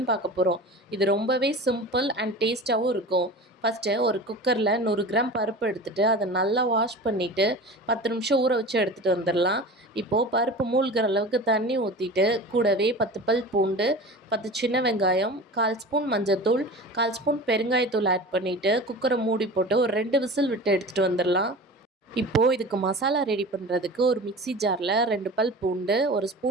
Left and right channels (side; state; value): both; normal; correlation 0.35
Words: பார்க்க போகிறோம். இது ரொம்பவே சிம்பிள் அண்ட் டேஸ்ட்டாகவும் இருக்கும். ஃபஸ்ட்டு ஒரு குக்கரில் 100 கிராம் பருப்பு எடுத்துகிட்டு அதை நல்லா வாஷ் பண்ணிவிட்டு 10 நிமிஷம் ஊற வச்சு எடுத்துகிட்டு வந்துடலாம். இப்போது பருப்பு மூழ்கிற அளவுக்கு தண்ணி ஊற்றிட்டு கூடவே 10 பல் பூண்டு, 10 சின்ன வெங்காயம், 1/4 ஸ்பூன் மஞ்சத்தூள், 1/4 ஸ்பூன் பெருங்காயத்தூள் ஆட் பண்ணிவிட்டு குக்கரை மூடி போட்டு ஒரு 2 விசில் விட்டு எடுத்துகிட்டு வந்துடலாம். இப்போது இதுக்கு மசாலா ரெடி பண்ணுறதுக்கு ஒரு மிக்ஸி ஜாரில் 2 பல் பூண்டு, 1